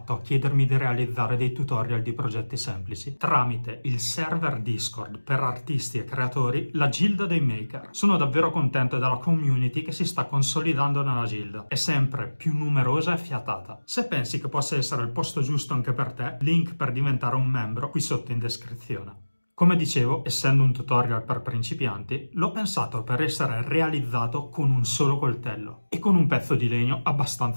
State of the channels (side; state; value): both; inverted; correlation -1.00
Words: a chiedermi di realizzare dei tutorial di progetti semplici? Tramite il server Discord per artisti e creatori, la Gilda dei Maker. Sono davvero contento della community che si sta consolidando nella Gilda. È sempre più numerosa e fiatata. Se pensi che possa essere il posto giusto anche per te, link per diventare un membro qui sotto in descrizione. Come dicevo, essendo un tutorial per principianti, l'ho pensato per essere realizzato con un solo coltello e con un pezzo di legno